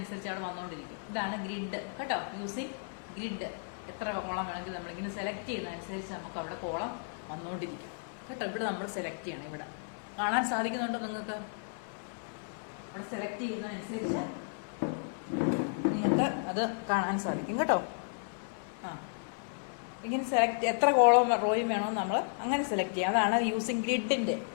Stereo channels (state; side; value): silent; right; digital silence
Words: അവിടെ വന്നുകൊണ്ടിരിക്കും. ഇതാണ് ഗ്രിഡ് കേട്ടോ. Using grid. എത്ര കോളം വേണമെങ്കിൽ നമ്മളിങ്ങനെ സെലക്ട് ചെയ്യുന്നതനുസരിച്ച് നമുക്ക് അവിടെ കോളം വന്നുകൊണ്ടിരിക്കും കേട്ടോ. ഇവിടെ നമ്മൾ സെലക്ട് ചെയ്യണം. ഇവിടെ കാണാൻ സാധിക്കുന്നുണ്ടോ നിങ്ങൾക്ക്? അവിടെ സെലക്ട് ചെയ്യുന്നതനുസരിച്ച് നിങ്ങൾക്ക് അത് കാണാൻ സാധിക്കും കേട്ടോ. ഇങ്ങനെ സെലക്ട് എത്ര കോളം റോയും വേണോ നമ്മൾ അങ്ങനെ സെലക്ട് ചെയ്യാം. അതാണ് യൂസിങ് ഗ്രിഡിന്റെ.